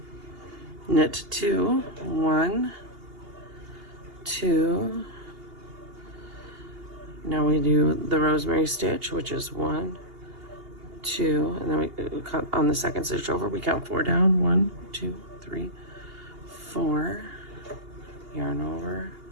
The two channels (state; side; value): late; left; 2.8 ms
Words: Knit 2, 1, 2. Now we do the rosemary stitch, which is 1, 2, and then we count on the second stitch over. We count 4 down. 1, 2, 3, 4. Yarn over.